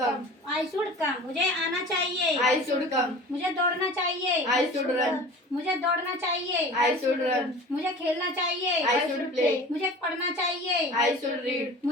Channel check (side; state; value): both; normal; correlation 0.39